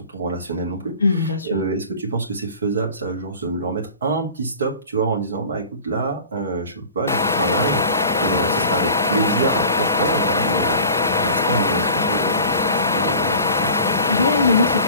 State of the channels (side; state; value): both; inverted; correlation -0.41